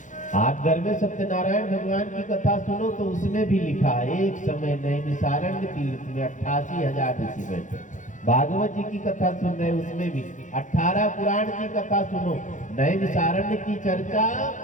आप घर में सत्यनारायण भगवान की कथा सुनो तो उसमें भी लिखा है, एक समय नैमिषारण्य तीर्थ में 88,000 ऋषि बैठे। भागवत जी की कथा सुन रहे, उसमें भी 18 पुराण की कथा सुनो। नैमिषारण्य की चर्चा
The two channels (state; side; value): late; right; 0.36 ms